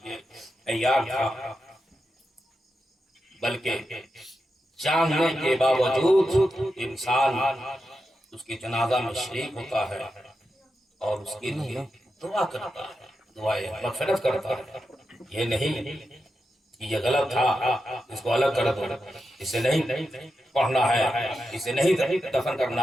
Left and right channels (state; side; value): normal; both; correlation 0.88